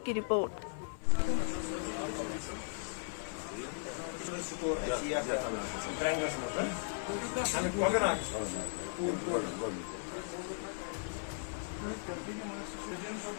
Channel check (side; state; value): right; silent; 53 dB below the other